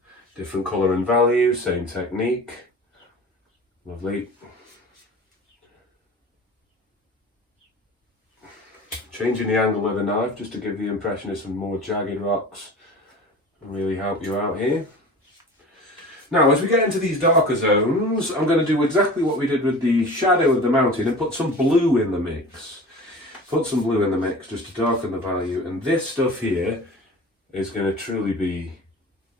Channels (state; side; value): normal; both; correlation 0.38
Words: different colour and value, same technique. Lovely. Changing the angle of the knife just to give the impression of some more jagged rocks and really help you out here. Now, as we get into these darker zones, I'm going to do exactly what we did with the shadow of the mountain and put some blue in the mix. Put some blue in the mix just to darken the value. And this stuff here is going to truly be